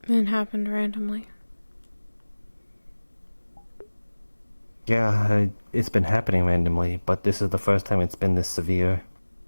It happened randomly. Yeah, it's been happening randomly, but this is the first time it's been this severe.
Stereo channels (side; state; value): both; inverted; correlation -1.00